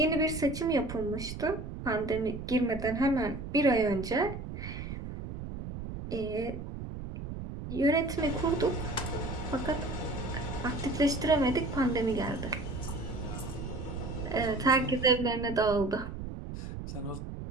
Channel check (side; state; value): right; noise; rumble, 8 dB below the sound